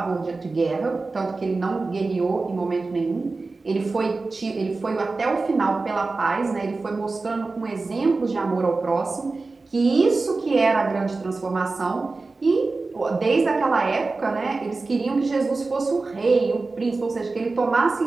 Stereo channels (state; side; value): quieter; left; 3.7 dB